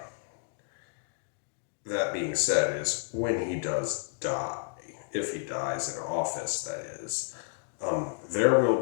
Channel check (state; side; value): silent; right; digital silence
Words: that being said, is when he does die, if he dies in office, that is, there